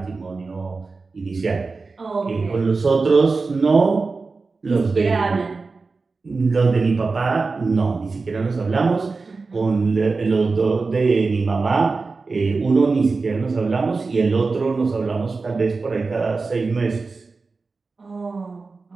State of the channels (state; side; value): quieter; left; 4.1 dB